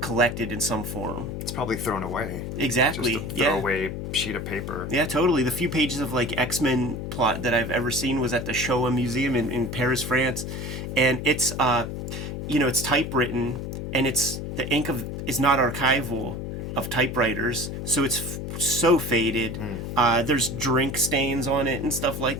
collected in some form. It's probably thrown away. Exactly. Just a throwaway sheet of paper. Yeah, totally. The few pages of like X-Men plot that I've ever seen was at the Showa Museum in Paris, France, and it's it's typewritten, and it's the ink is not archival of typewriters, so it's so faded. There's drink stains on it and stuff like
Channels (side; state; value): left; noise; hum, 6 dB below the sound